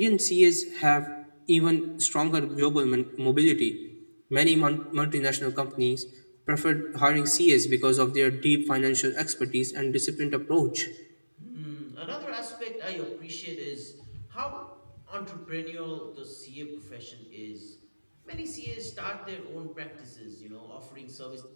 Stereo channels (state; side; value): inverted; both; correlation -1.00